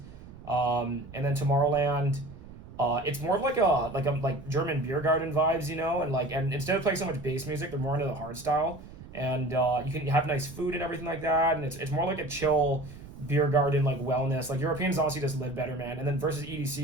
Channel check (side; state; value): right; noise; rumble, 16 dB below the sound